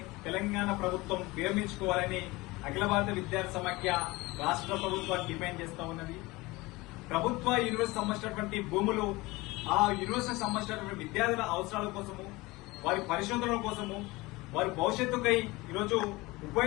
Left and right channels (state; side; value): quieter; right; 21.6 dB